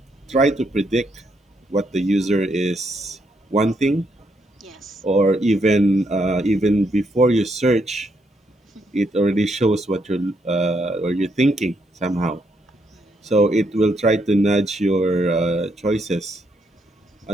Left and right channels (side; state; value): both; normal; correlation 0.76